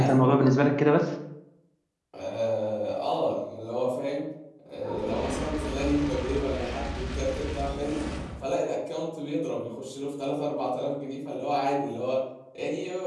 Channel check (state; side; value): identical; both; correlation 1.00